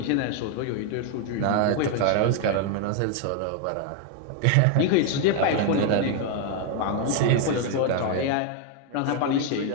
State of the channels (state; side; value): different; both; correlation 0.01